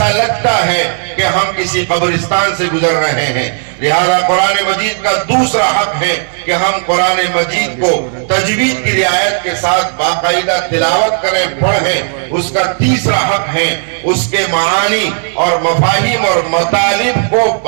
لگتا ہے کہ ہم کسی قبرستان سے گزر رہے ہیں. لہذا قرآن مجید کا دوسرا حق ہے کہ ہم قرآن مجید کو تجوید کی رعایت کے ساتھ باقاعدہ تلاوت کریں، پڑھیں. اس کا تیسرا حق ہے اس کے معانی اور مفاہیم اور مطالب کو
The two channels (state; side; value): silent; left; digital silence